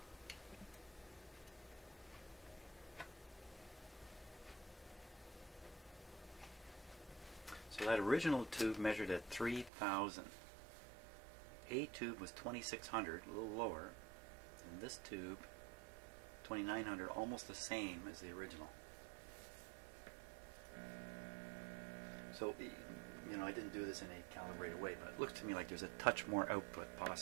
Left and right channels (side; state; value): left; drops out; at 9.7 s